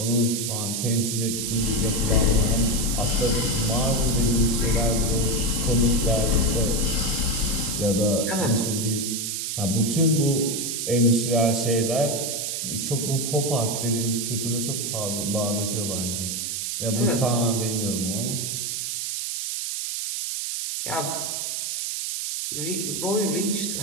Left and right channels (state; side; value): noise; right; hiss, 2 dB below the sound